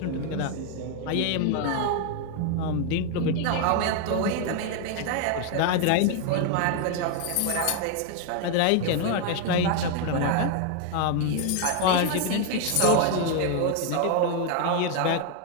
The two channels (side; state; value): both; different; correlation 0.01